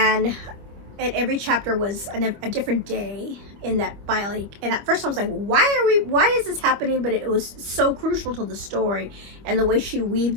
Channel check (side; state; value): left; late; 25 ms